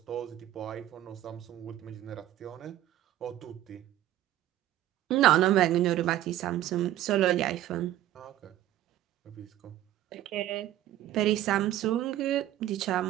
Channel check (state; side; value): quieter; left; 13.3 dB